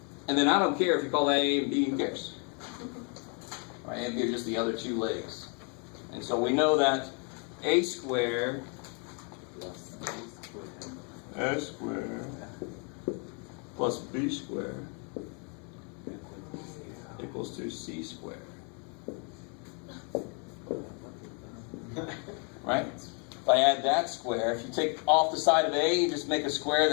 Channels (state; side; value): quieter; right; 37.3 dB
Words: And then I don't care if you call that A and B, who cares? Right, A and B are just the other 2 legs. And so we know that A squared S squared plus B squared equals to C squared. Right? If I add that square, if you take off the side of A, you just make a square